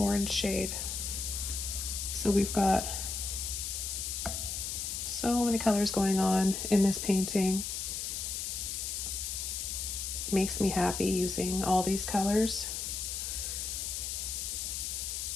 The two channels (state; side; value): noise; left; hiss, 3 dB below the sound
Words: shade. So we've got so many colors going on in this painting. Makes me happy using all these colors.